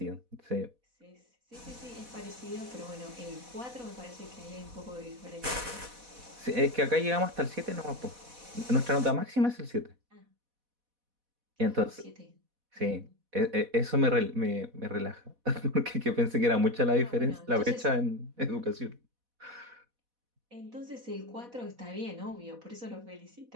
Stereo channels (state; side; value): late; left; 4.1 ms